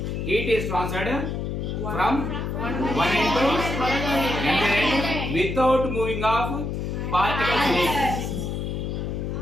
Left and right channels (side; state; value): left; noise; hum, 3 dB below the sound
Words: heat is transferred from one end to another end without moving of particles.